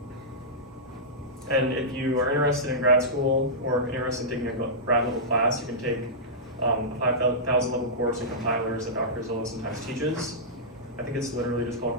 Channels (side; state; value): both; normal; correlation -0.14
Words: And if you are interested in grad school or interested in taking a grad level class, you can take a 5,000 level course in compilers that Dr. Zillow sometimes teaches. I think it's literally just called